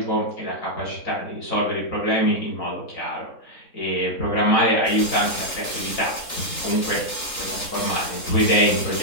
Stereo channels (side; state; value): right; late; 3.8 ms